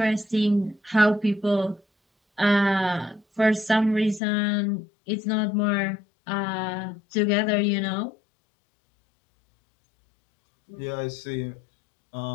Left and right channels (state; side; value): drops out; right; at 4.2 s